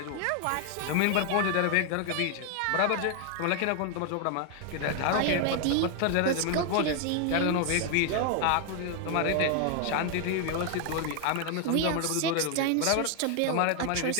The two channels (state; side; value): different; both; correlation 0.00